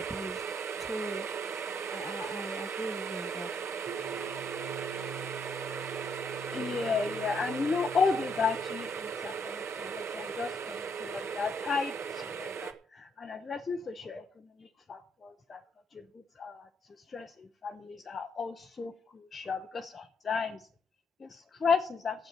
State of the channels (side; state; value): both; normal; correlation 0.73